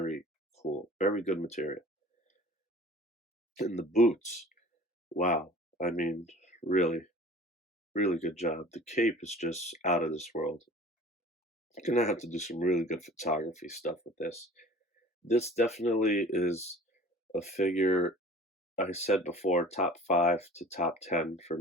cool. Very good material. And the boots, wow. I mean, really, really good job. The cape is just out of this world. Gonna have to do some really good photography stuff with this. This definitely is a figure I said before, top 5 to top 10 for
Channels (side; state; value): both; normal; correlation 0.43